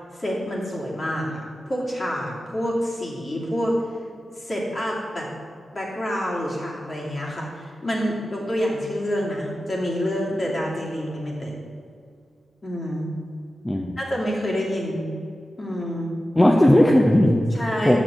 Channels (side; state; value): both; normal; correlation 0.94